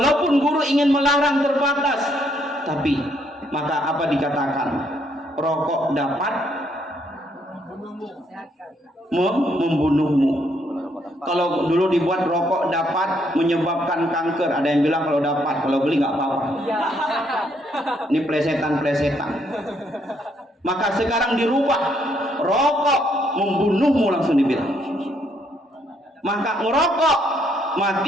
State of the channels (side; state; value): both; normal; correlation 0.72